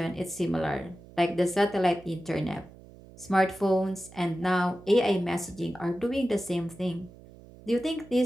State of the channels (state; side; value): noise; right; hum, 21 dB below the sound